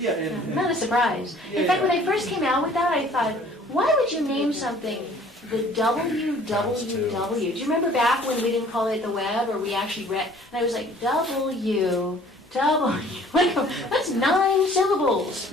Yeah, and not a surprise. In fact, when I first came out with that, I thought, why would you name something the www? Do you remember back when we didn't call it the web, or we actually read, and I was like, W. That's 9 syllables.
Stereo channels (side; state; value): both; normal; correlation 0.53